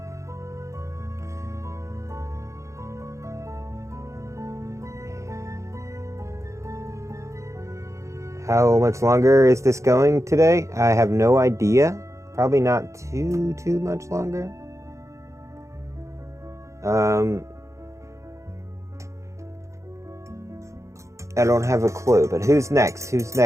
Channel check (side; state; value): left; late; 0.15 ms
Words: How much longer is this going today? I have no idea. Probably not too much longer. I don't have a clue, but who's next? Who's